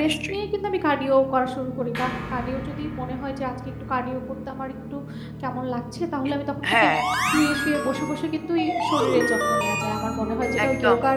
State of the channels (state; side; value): identical; both; correlation 1.00